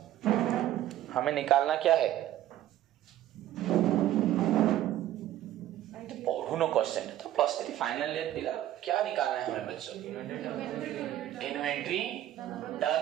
हमें निकालना क्या है, नो क्वेश्चन है तो +3 फाइनल ईयर पिला, क्या निकालना है हमें बच्चों, इन्वेंट्री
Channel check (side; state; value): left; quieter; 13.2 dB